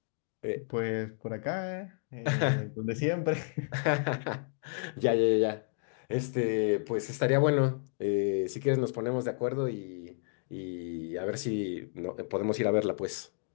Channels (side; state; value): right; silent; 57 dB below the other